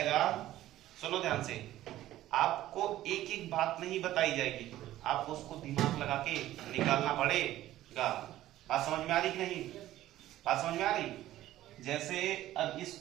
सुनो ध्यान से, आपको एक एक बात नहीं बताई जाएगी, आपको उसको दिमाग लगा के निकालना पड़ेगा। बात समझ में आ रही कि नहीं? बात समझ में आ रही? जैसे अब इस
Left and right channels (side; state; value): left; quieter; 14.3 dB